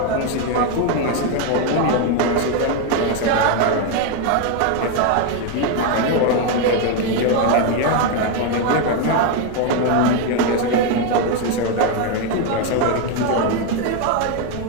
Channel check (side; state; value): both; different; correlation 0.02